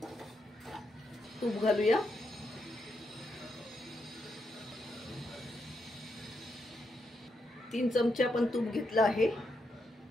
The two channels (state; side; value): normal; both; correlation 0.82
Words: तूप घालूया। तीन चमचे आपण तूप घेतलं आहे।